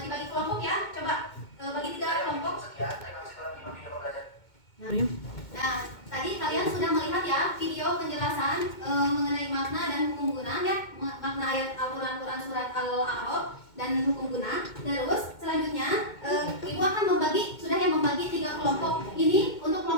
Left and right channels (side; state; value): right; late; 2.2 ms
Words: dibagi kelompok ya. Coba bagi 3 kelompok. Sekian, terima kasih telah menyimak video pembelajaran. Nah, tadi kalian sudah melihat ya video penjelasan mengenai makna dan hukum guna ya, makna ayat Al-Quran surat Al-A'raf dan hukum guna. Terus selanjutnya Ibu akan membagi 3 kelompok. Ini untuk